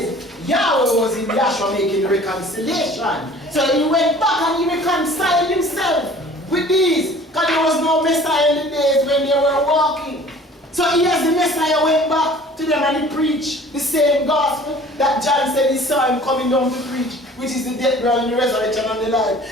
Yahweh was in Yahshua making reconciliation. So he went back and he reconciled himself with these. Because there was no Messiah in the days when they were walking. So he as the Messiah went back to them and he preached the same gospel that John said he saw him coming down to preach, which is the death, burial, and the resurrection and the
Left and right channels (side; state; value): both; normal; correlation 0.48